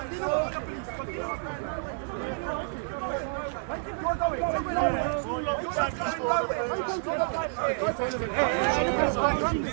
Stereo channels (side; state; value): left; silent; digital silence